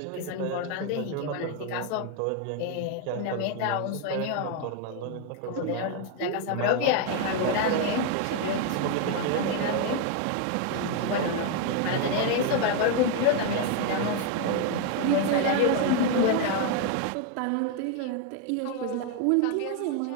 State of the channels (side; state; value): both; different; correlation 0.01